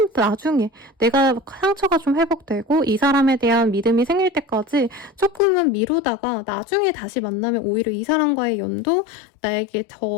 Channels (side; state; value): right; drops out; at 5.4 s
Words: 나중에 내가 상처가 좀 회복되고 이 사람에 대한 믿음이 생길 때까지 조금은 미루다가 나중에 다시 만나면 오히려 이 사람과의 연도 나에게